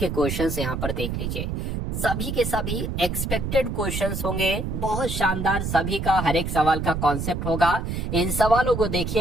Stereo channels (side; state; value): right; noise; rumble, 3 dB below the sound